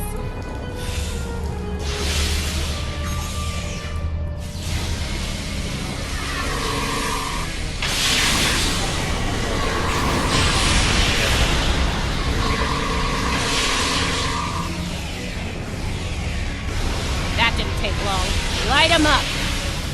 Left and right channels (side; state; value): both; identical; correlation 1.00